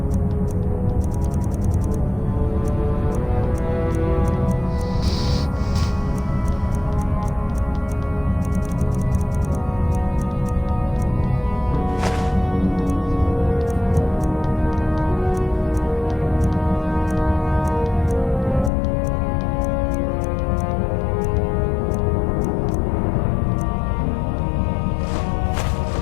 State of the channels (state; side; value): drops out; right; at 18.7 s